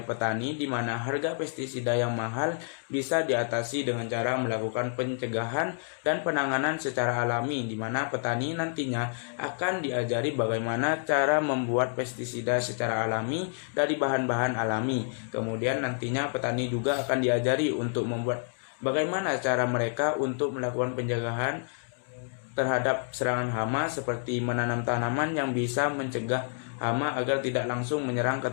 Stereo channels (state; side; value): silent; right; digital silence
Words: petani di mana harga pestisida yang mahal bisa diatasi dengan cara melakukan pencegahan dan penanganan secara alami, di mana petani nantinya akan diajari bagaimana cara membuat pestisida secara alami dari bahan-bahan alami. Kemudian nantinya petani juga akan diajari untuk membuat bagaimana cara mereka untuk melakukan pencegahan terhadap serangan hama, seperti menanam tanaman yang bisa mencegah hama agar tidak langsung menyerang ke